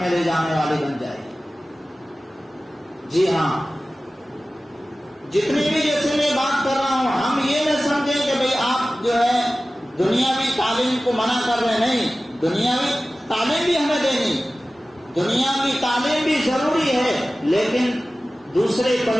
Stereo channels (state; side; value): normal; both; correlation 0.96